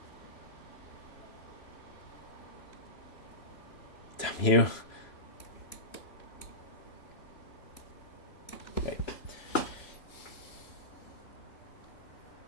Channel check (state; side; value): late; right; 3.0 ms